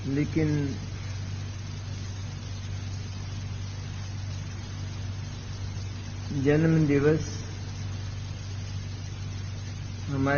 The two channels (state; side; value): identical; both; correlation 1.00